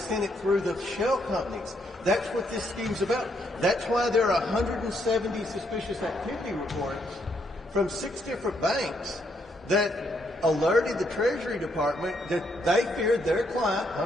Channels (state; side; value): normal; both; correlation 0.74